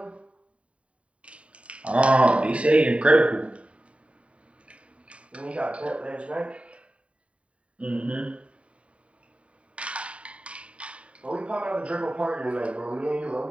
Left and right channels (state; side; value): late; left; 0.063 ms